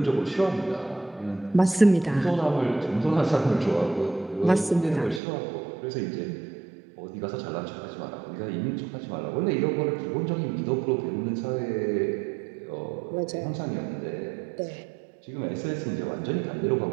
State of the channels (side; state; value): left; drops out; at 5.2 s